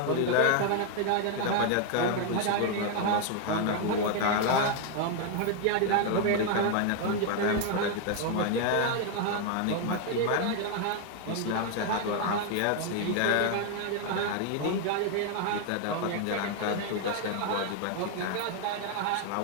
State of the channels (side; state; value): both; different; correlation 0.00